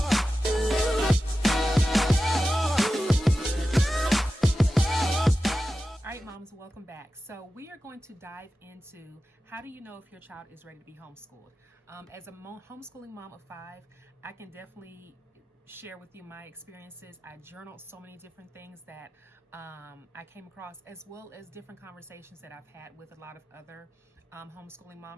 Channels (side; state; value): both; normal; correlation 0.93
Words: Moms, welcome back. So we are going to dive into how do you know if your child is ready to be homeschooled. As a homeschooling mom of 5, I can definitely share with you my experiences. I journaled so many different things that I came across, as well as different conversations that I've had with a lot of other homeschooling